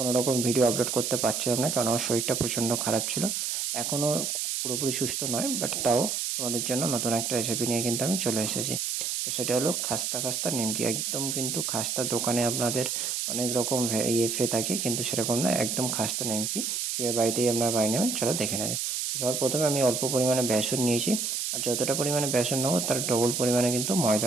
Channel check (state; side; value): noise; right; hiss, 1 dB below the sound